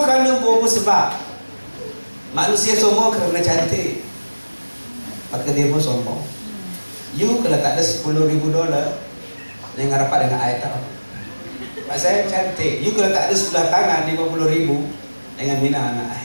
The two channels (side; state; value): both; inverted; correlation -1.00